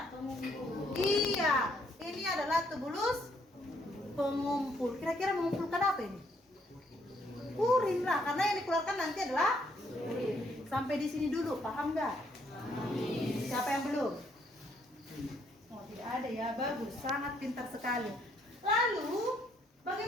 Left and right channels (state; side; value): normal; both; correlation 0.70